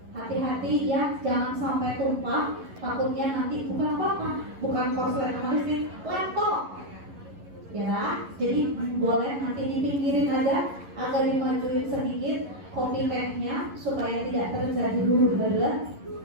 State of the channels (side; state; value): left; late; 11 ms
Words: hati-hati ya, jangan sampai tumpah. Takutnya nanti bukan apa-apa, bukan korslet sama listrik, laptop. Ya, jadi boleh nanti dipinggirin aja, agak dimajuin sedikit kopi tehnya supaya tidak terjadi huru-hara.